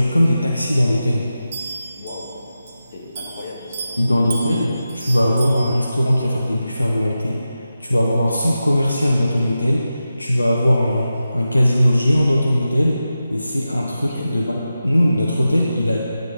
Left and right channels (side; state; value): both; inverted; correlation -0.92